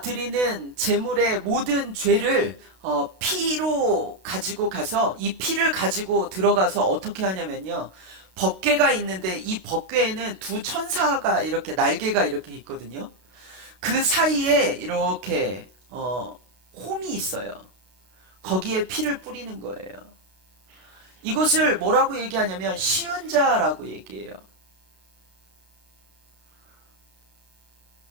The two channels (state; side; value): late; left; 32 ms